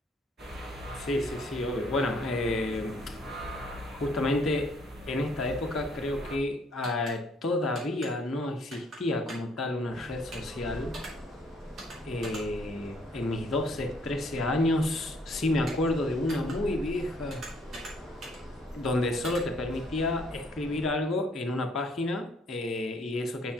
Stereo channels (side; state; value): both; normal; correlation 0.64